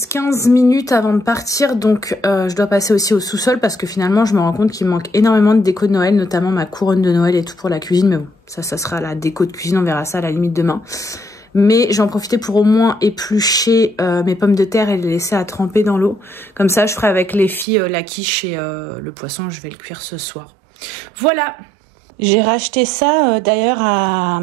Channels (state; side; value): drops out; left; at 17.7 s